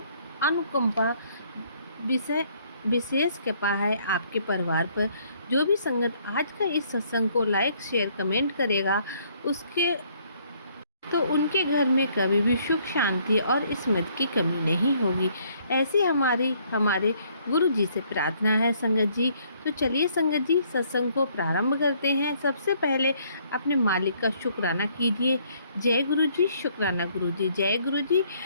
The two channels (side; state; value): both; inverted; correlation -0.65